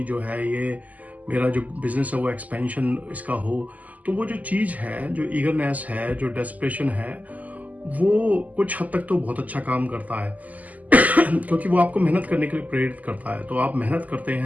जो है ये मेरा जो बिजनेस है वो एक्सपेंशन इसका हो। तो वो जो चीज है, जो ईगरनेस है, जो डेस्परेशन है, वो कुछ हद तक तो बहुत अच्छा काम करता है क्योंकि वो आपको मेहनत करने के लिए प्रेरित करता है। तो आप मेहनत करते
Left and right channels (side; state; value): left; late; 0.077 ms